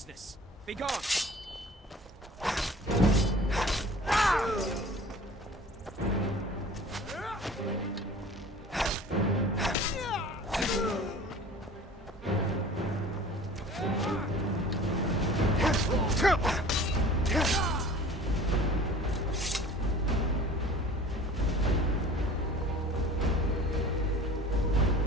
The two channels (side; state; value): both; normal; correlation 0.44